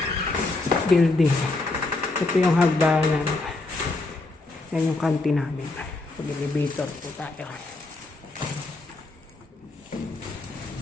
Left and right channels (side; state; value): right; quieter; 3.1 dB